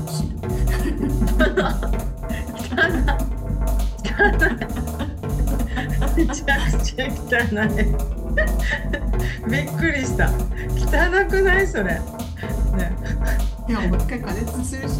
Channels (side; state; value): both; identical; correlation 1.00